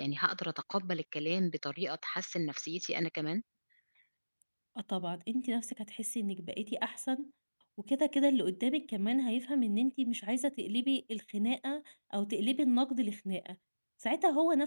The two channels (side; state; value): both; inverted; correlation -1.00